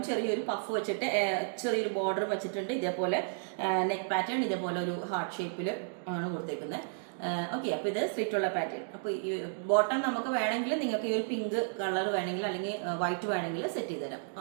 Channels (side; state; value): left; silent; digital silence